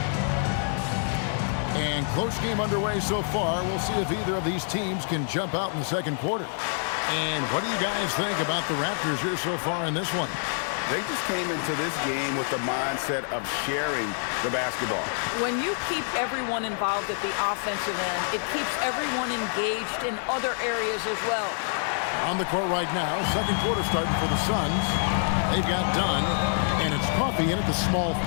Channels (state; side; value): silent; right; digital silence